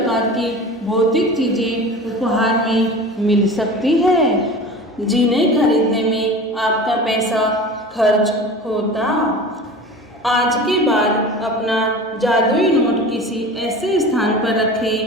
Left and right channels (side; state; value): both; normal; correlation 0.35